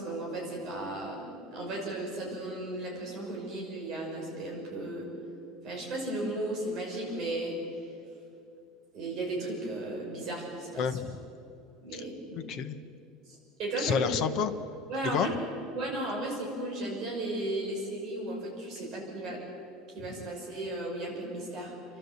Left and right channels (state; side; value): normal; both; correlation 0.37